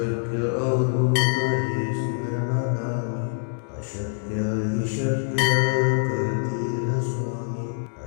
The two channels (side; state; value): right; silent; digital silence